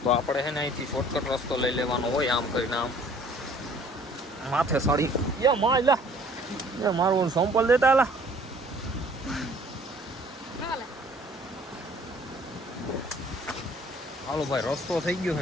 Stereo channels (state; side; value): normal; both; correlation 0.55